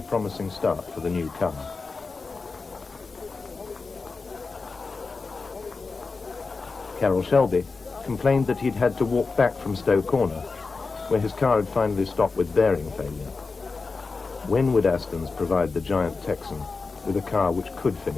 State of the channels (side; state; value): right; quieter; 4.2 dB